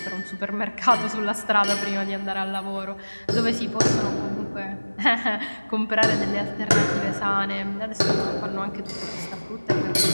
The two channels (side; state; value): both; inverted; correlation -1.00